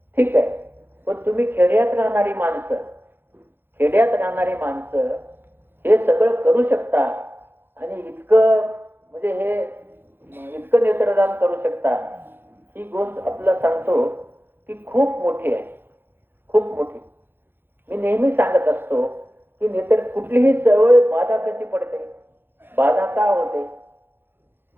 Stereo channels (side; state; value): left; late; 0.10 ms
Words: ठीक आहे. पण तुम्ही खेड्यात राहणारी माणसं हे सगळं करू शकता आणि इतकं नेत्रदान करू शकता. ही गोष्ट आपल्याला सांगतो की खूप मोठी आहे, खूप मोठी. मी नेहमी सांगत असतो की नेत्र कुठलीही चळवळ बाधा कशी पडते, बाधा का होते.